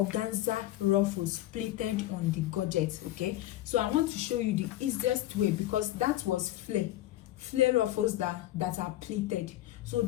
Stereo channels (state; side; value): quieter; right; 14.8 dB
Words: ruffles plated on the Godget. Okay, so I want to show you the easiest way, because that was flare ruffles that are pleated. So